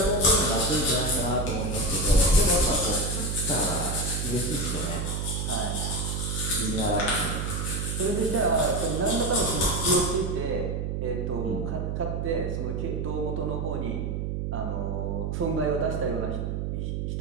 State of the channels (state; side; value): noise; right; hum, 2 dB below the sound